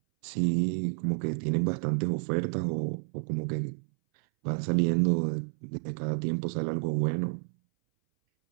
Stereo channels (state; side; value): silent; left; 58 dB below the other